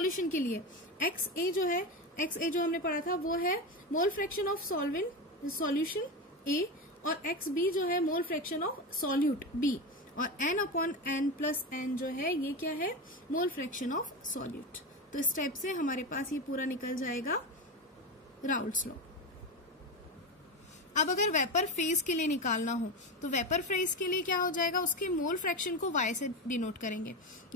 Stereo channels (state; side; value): normal; both; correlation 0.18